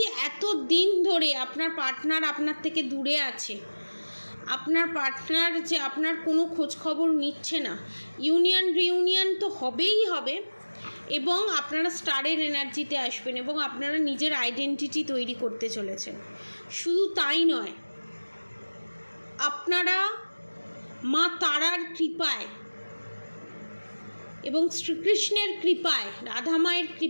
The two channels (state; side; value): inverted; both; correlation -1.00